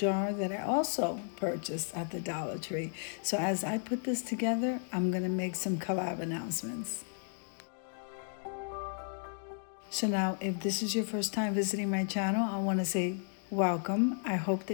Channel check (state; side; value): silent; right; 55 dB below the other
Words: that I also purchased at the Dollar Tree. So as I put this together, I'm going to make some collab announcements. So now, if this is your first time visiting my channel, I want to say welcome. I hope